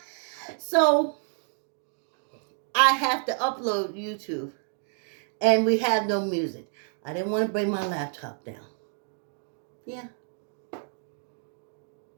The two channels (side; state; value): left; silent; 59 dB below the other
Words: So I have to upload YouTube. And we have no music. I didn't want to bring my laptop down. Yeah.